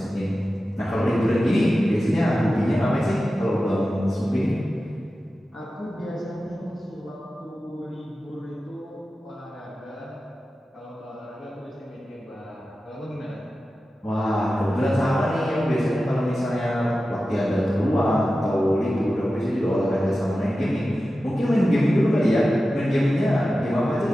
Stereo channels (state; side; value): normal; both; correlation 0.94